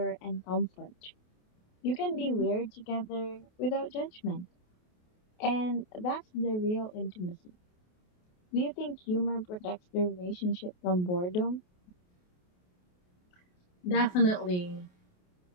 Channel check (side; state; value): right; late; 28 ms